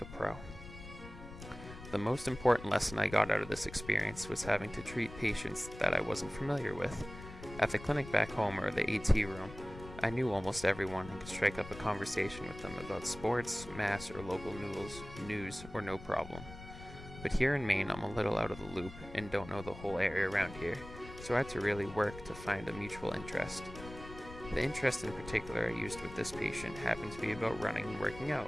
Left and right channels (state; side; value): noise; left; rumble, 14 dB below the sound